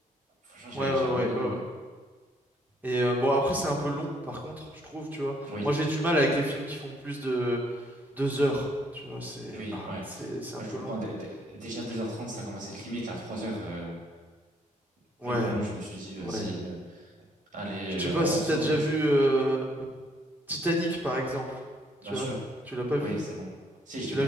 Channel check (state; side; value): normal; both; correlation 0.68